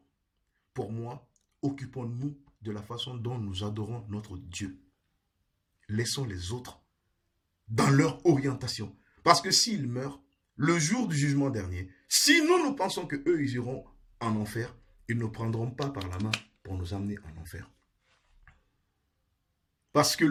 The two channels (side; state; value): both; identical; correlation 1.00